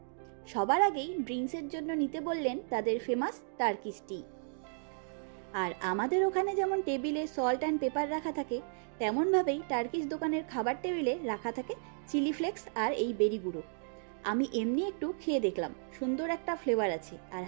সবার আগেই ড্রিঙ্কসের জন্য নিতে বললেন তাদের ফেমাস টার্কিশ টি। আর আমাদের ওখানে যেমন টেবিলে সল্ট অ্যান্ড পেপার রাখা থাকে, তেমনভাবেই টার্কিশ দোকানের খাবার টেবিলে রাখা থাকে চিলি ফ্লেক্স আর এই বেরি গুঁড়ো। আমি এমনি একটু খেয়ে দেখলাম, সুন্দর একটা ফ্লেভার আছে আর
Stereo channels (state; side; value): silent; left; digital silence